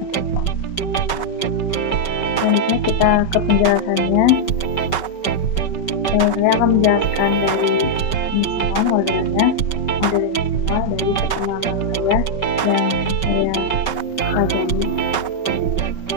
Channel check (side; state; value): right; late; 5.3 ms